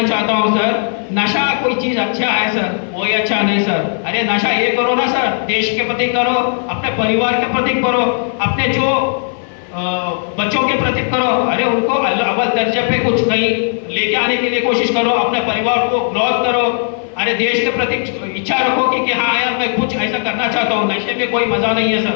चाहता हूँ सर, नशा कोई चीज अच्छा है सर, कोई अच्छा नहीं सर। अरे नशा ये करो ना सर, देश के प्रति करो, अपने परिवार के प्रति करो, अपने जो बच्चों के प्रति करो। अरे उनको अव्वल दर्जे पे कुछ कहीं लेके आने के लिए कोशिश करो, अपने परिवार को ग्रोथ करो। अरे देश के प्रति इच्छा रखो कि हाँ यार मैं कुछ ऐसा करना चाहता हूँ। नशे में कोई मजा नहीं है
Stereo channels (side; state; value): right; silent; 55 dB below the other